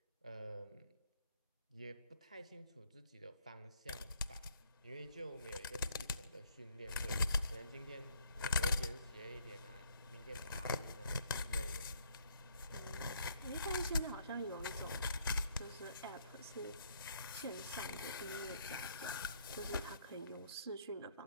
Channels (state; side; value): inverted; both; correlation -0.68